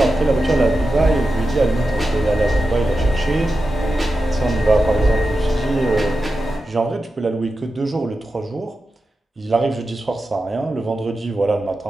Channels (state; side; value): normal; both; correlation 0.91